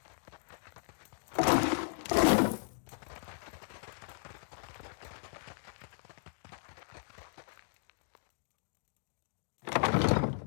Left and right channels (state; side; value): silent; right; digital silence